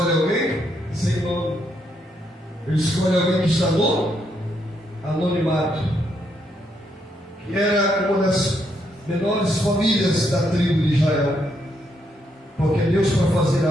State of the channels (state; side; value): normal; both; correlation 0.76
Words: alguém sem nome. Ele escolhe alguém que está no anonimato, que era uma das menores famílias da tribo de Israel. Porque Deus, para fazer